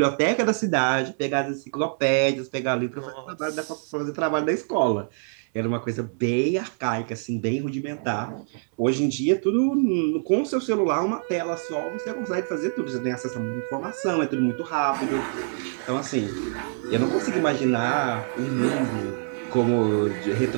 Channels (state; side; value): silent; left; 62 dB below the other